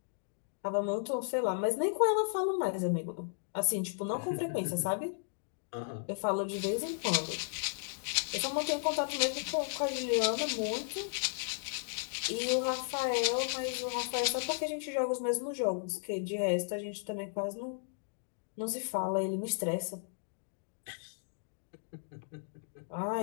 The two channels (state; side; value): silent; right; digital silence